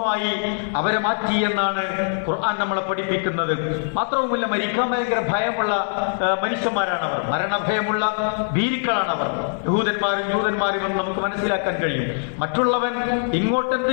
അവരെ മാറ്റി എന്നാണ് ഖുർആൻ നമ്മളെ പഠിപ്പിക്കുന്നത്. മാത്രവുമല്ല, മരിക്കാൻ ഭയങ്കര ഭയമുള്ള മനുഷ്യന്മാരാണ് അവർ, മരണഭയമുള്ള ഭീരുക്കളാണ് അവർ. യഹൂദന്മാരും ജൂതന്മാരും എന്ന് നമുക്ക് മനസ്സിലാക്കാൻ കഴിയും. മറ്റുള്ളവൻ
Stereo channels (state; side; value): silent; right; digital silence